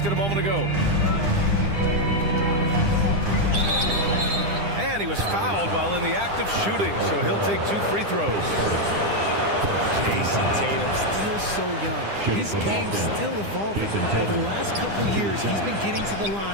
a moment ago. And he was fouled while in the act of shooting, so he'll take 2 free throws. Jason Tatum, still so young. His game's still evolving. Over the last couple years, he's been getting to the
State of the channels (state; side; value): late; left; 9.9 ms